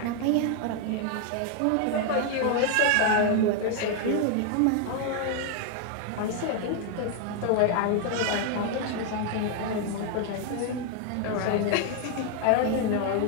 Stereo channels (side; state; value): both; different; correlation 0.00